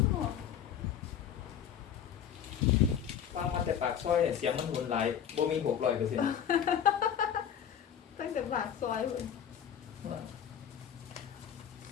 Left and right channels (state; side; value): quieter; right; 8.9 dB